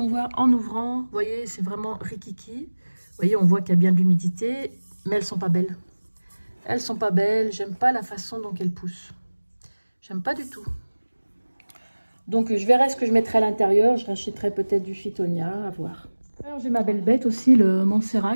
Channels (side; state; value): both; inverted; correlation -1.00